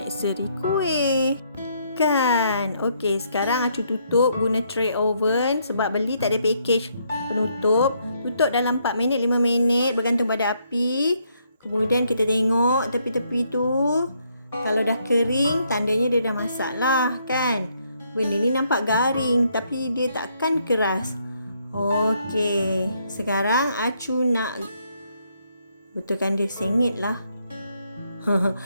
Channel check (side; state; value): both; inverted; correlation -0.73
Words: seri kuih. Kan? Okey, sekarang Acu tutup guna tray oven sebab beli tak ada package penutup. Tutup dalam 4 minit, 5 minit bergantung pada api. Kemudian kita tengok tepi-tepi tu. Kalau dah kering, tandanya dia dah masak lah kan? Benda ni nampak garing tapi dia takkan keras. Okey, sekarang Acu nak betulkan dia sengit lah.